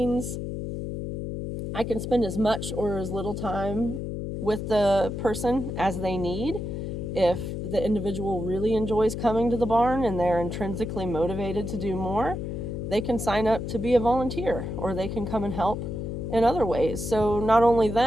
I can spend as much or as little time with the person as they need. If the individual really enjoys coming to the barn and they're intrinsically motivated to do more, they can sign up to be a volunteer, or they can come and help in other ways. So not only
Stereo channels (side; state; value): left; noise; hum, 5 dB below the sound